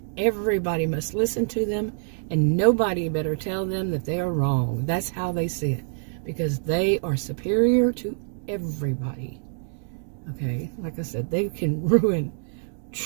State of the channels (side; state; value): left; silent; digital silence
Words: everybody must listen to them, and nobody better tell them that they are wrong. That's how they see it, because they are superior to everybody. Okay, like I said, they can